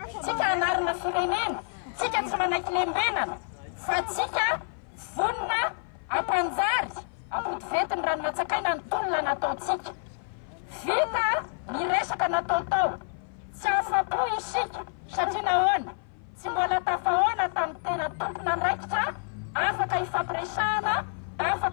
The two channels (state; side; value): silent; right; 56 dB below the other